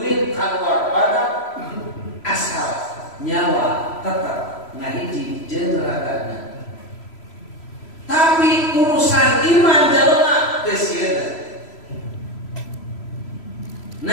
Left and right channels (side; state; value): right; late; 3.0 ms